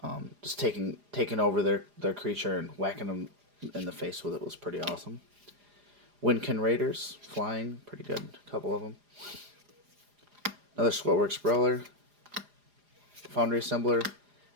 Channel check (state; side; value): late; left; 4.9 ms